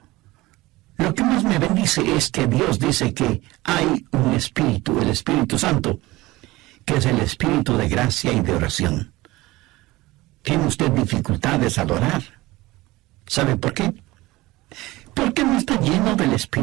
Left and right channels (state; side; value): quieter; left; 19.7 dB